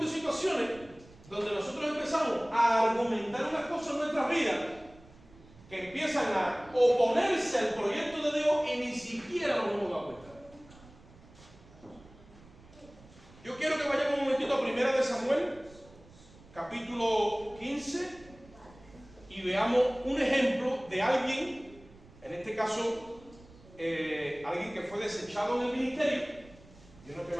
de situaciones donde nosotros empezamos a argumentar unas cosas en nuestras vidas que empiezan a oponerse al proyecto de Dios y ni siquiera nos hemos dado cuenta. caso, alguien que fue desechado en el ministerio, yo no estoy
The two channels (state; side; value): noise; right; rumble, 23 dB below the sound